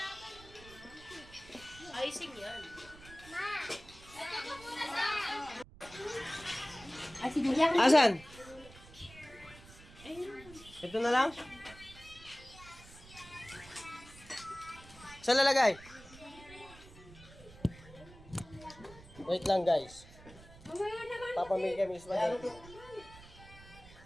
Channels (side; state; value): right; noise; rumble, 19 dB below the sound